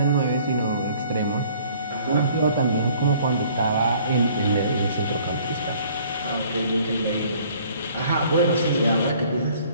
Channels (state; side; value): inverted; both; correlation -0.56